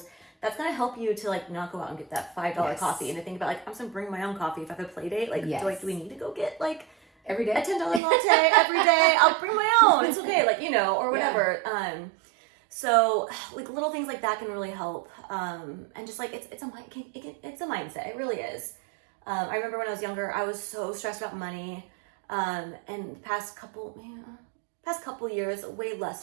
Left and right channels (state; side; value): drops out; left; at 8.0 s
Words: That's gonna help you to like not go out and get that $5 coffee and to think about like, I'm just gonna bring my own coffee if I have a play date. Like, do we need to go get like every day a $10 latte every day? I'll bring my own. It's okay, like or whatever. Yeah. So like little things like that can really help. And just like it's a mindset. It really is. I remember when I was younger, I was so stressed about money. And the past couple years, way